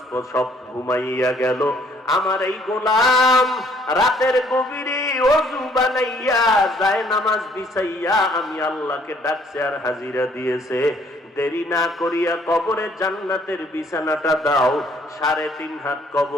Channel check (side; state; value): both; normal; correlation 0.62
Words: সব ঘুমাইয়া গেল। আমার এই গোলাম রাতের গভীরে ওযু বানাইয়া যায় নামাজ বিছাইয়া আমি আল্লাহকে ডাকছে আর হাজিরা দিয়েছে। দেরি না করিয়া কবরে জান্নাতের বিছানাটা দাও, 3.5 হাত